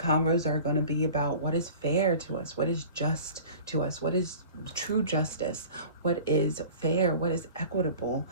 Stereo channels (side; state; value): both; inverted; correlation -0.43